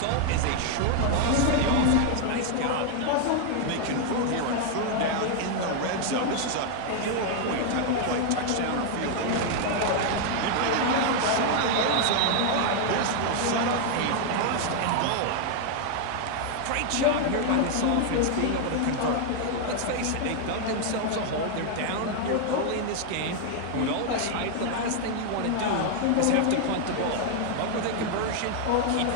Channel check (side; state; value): both; different; correlation 0.00